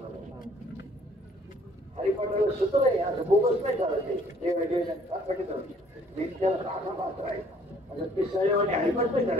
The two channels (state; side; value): normal; both; correlation 0.60